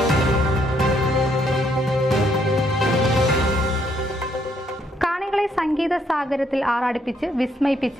കാണികളെ സംഗീത സാഗരത്തിൽ ആറാടിപ്പിച്ച്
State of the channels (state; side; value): normal; both; correlation 0.71